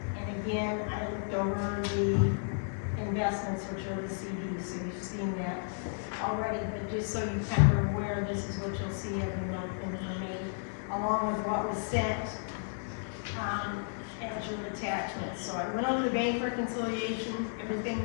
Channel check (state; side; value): silent; right; 56 dB below the other